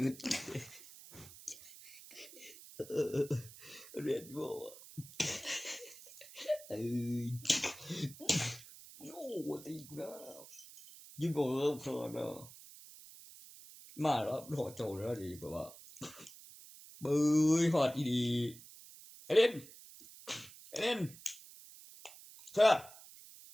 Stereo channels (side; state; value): right; noise; hiss, 18 dB below the sound